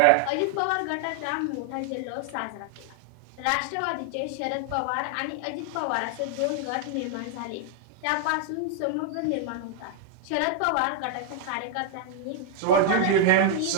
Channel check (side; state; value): both; different; correlation 0.00